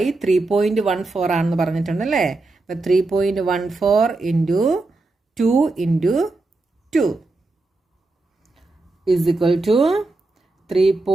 3.14 ആണെന്ന് പറഞ്ഞിട്ടുണ്ട് അല്ലേ. അപ്പം 3.14 into 2 into 2 is equal to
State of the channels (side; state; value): left; quieter; 3.2 dB